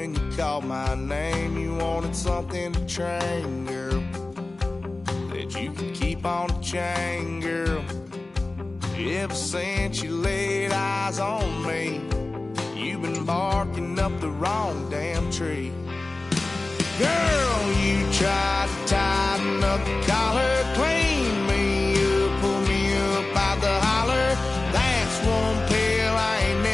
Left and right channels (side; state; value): right; quieter; 3.1 dB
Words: you called my name. You wanted something to train, girl, that you could keep on the chain, girl. Ever since you laid eyes on me, you've been barking up the wrong damn tree. Girl, you tried to tighten up the collar, clean me up, pull me up out the holler. That's one pill I ain't